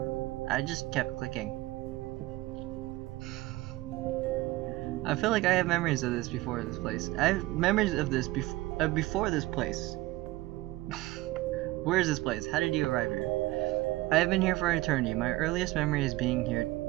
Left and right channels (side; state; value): left; quieter; 19.1 dB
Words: I just kept clicking. I feel like I have memories of this before this place. I have memories of this before this place. Where is this place? How did you arrive here? I have been here for eternity. My earliest memory is being here